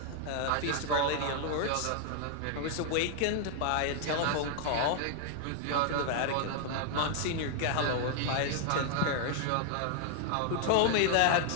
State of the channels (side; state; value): both; different; correlation 0.00